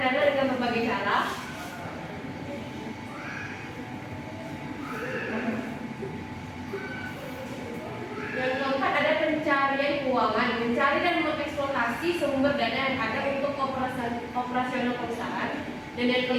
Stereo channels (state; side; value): identical; both; correlation 1.00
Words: dana dengan berbagai cara. Yang keempat ada pencarian keuangan, mencari dan mengeksploitasi sumber dana yang ada untuk operasional perusahaan. Dan yang